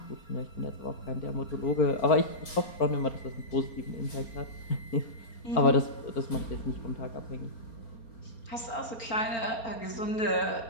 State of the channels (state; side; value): late; right; 4.3 ms